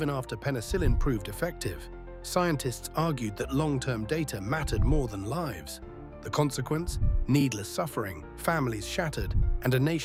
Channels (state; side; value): identical; both; correlation 1.00